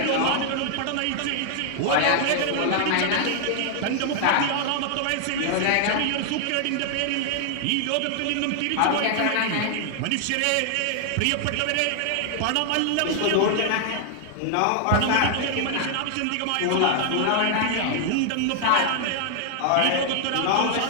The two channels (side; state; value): both; different; correlation 0.00